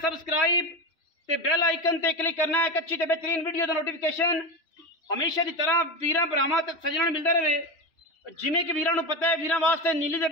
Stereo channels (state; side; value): late; right; 3.1 ms